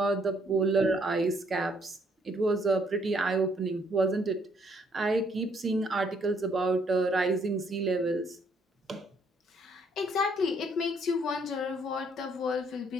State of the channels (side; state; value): both; normal; correlation 0.67